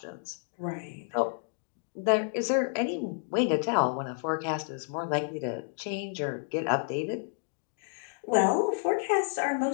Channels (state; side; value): silent; right; digital silence